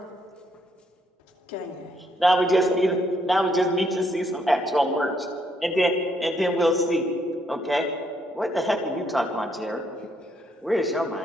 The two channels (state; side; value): normal; both; correlation 0.71